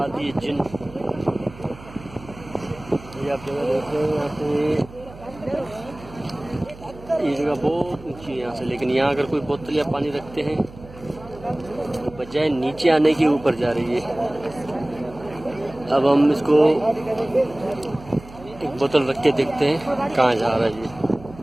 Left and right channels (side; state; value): right; noise; hum, 18 dB below the sound